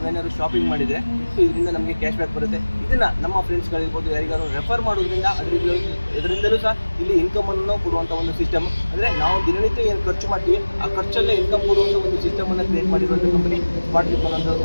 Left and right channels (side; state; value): both; inverted; correlation -1.00